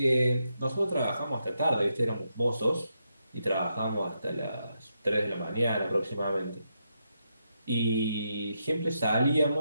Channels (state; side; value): inverted; both; correlation -0.82